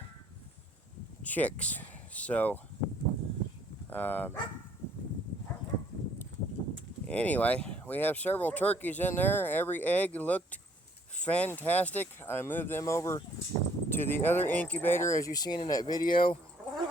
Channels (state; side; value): normal; both; correlation 0.62